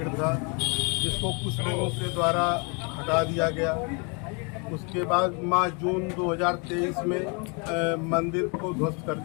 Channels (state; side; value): quieter; right; 33.7 dB